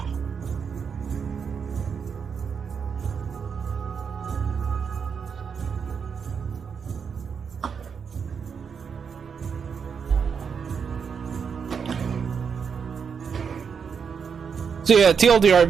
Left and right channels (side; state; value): left; quieter; 6.4 dB